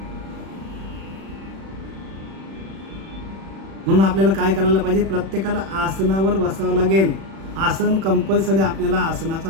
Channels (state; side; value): late; left; 36 ms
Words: म्हणून आपल्याला काय करायला पाहिजे, प्रत्येकाला आसनावर बसावं लागेल. आसन कंपल्सरी आपल्याला